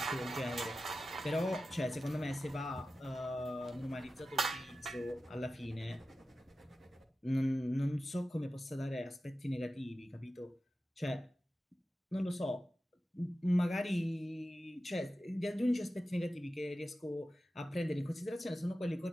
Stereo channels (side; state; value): both; normal; correlation 0.93